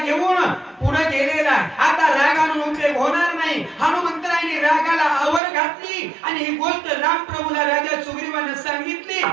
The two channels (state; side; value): drops out; left; at 5.4 s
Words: पुढे गेलेला, आता राग आणून उपयोग होणार नाही. हनुमंतरायाने रागाला आवर घातली आणि ही गोष्ट रामप्रभूला राजा सुग्रीवाने सांगितली.